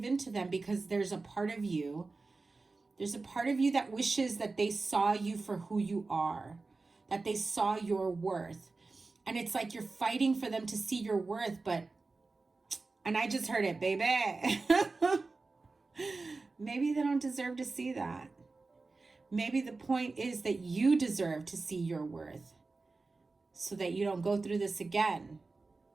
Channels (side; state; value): left; quieter; 3.7 dB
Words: in to them? Because there's a part of you that wishes that they saw you for who you are, that they saw your worth. And it's like you're fighting for them to see your worth, and I just heard it, baby. Maybe they don't deserve to see that. Maybe the point is that you deserve to see your worth, so that you don't go through this again.